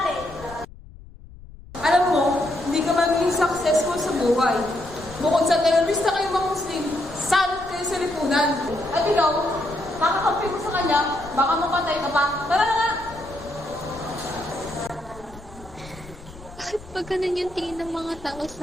Alam mo, hindi ka magiging successful sa buhay. Bukod sa terorista kayong mga Muslim, salot kayo sa lipunan. At ikaw, makakampi mo sa kanya, baka mapatay ka pa. Tara na nga! Bakit ba ganun yung tingin ng mga tao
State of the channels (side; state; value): left; noise; rumble, 18 dB below the sound